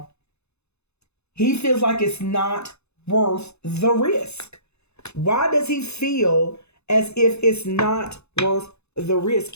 He feels like it's not worth the risk. Why does he feel as if it's not worth the risk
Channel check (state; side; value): late; right; 0.80 ms